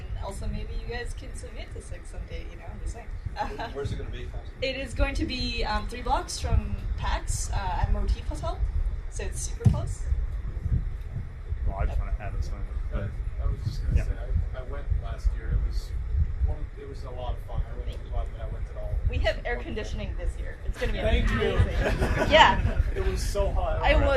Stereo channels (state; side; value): identical; both; correlation 1.00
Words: also maybe you guys can submit to Six someday, I'm just saying. Where's it going to be? It is going to be 3 blocks from PAX at Motif Hotel, so it's super close. Well, I just want to add this one. I was just going to say, I went last year. It was a lot of fun. I really glad that I went at all. We have air conditioning this year. It's going to be Thank amazing. you. Yeah. It was so hot.